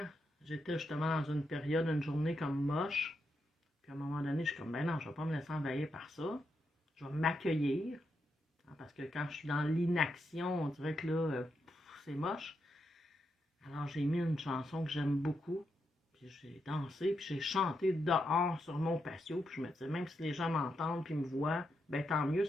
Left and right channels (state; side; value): normal; both; correlation 0.83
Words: j'étais justement dans une période, une journée comme moche. Puis à un moment donné, je suis comme, ben non, je ne vais pas me laisser envahir par ça. Je vais m'accueillir. Parce que quand je suis dans l'inaction, on dirait que là, c'est moche. Alors j'ai mis une chanson que j'aime beaucoup. Puis j'ai dansé, puis j'ai chanté dehors sur mon patio. Puis je me disais, même si les gens m'entendent puis me voient, ben tant mieux,